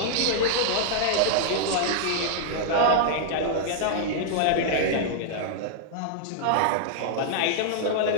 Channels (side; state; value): both; different; correlation -0.01